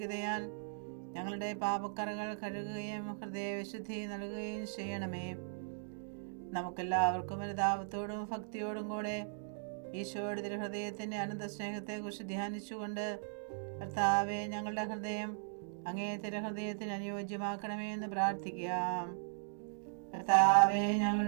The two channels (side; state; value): left; silent; digital silence